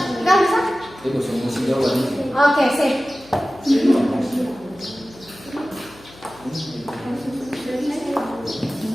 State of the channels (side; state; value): left; noise; hum, 23 dB below the sound